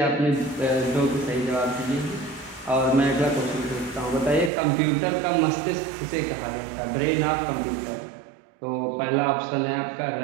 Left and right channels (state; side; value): drops out; left; at 4.5 s